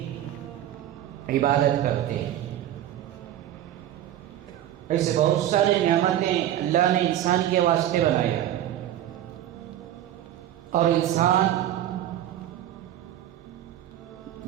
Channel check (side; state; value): left; quieter; 12.2 dB